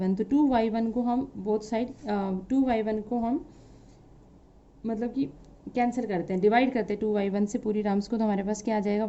तो 2y1 को हम बोथ साइड 2y1 को हम मतलब कि कैंसिल करते हैं, डिवाइड करते हैं 2y1 से पूरी टर्म्स को, तो हमारे पास क्या आ जाएगा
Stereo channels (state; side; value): identical; both; correlation 1.00